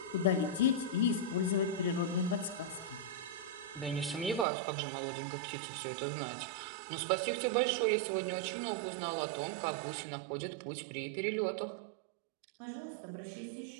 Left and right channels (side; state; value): left; drops out; at 4.5 s